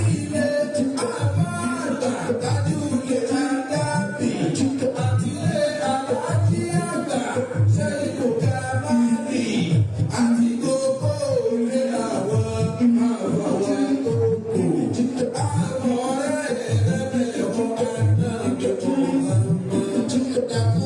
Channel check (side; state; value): both; identical; correlation 1.00